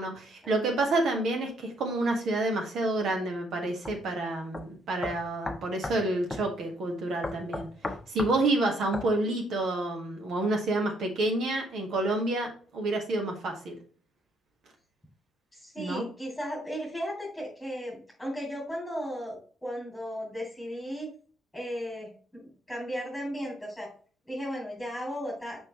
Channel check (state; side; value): normal; both; correlation 0.70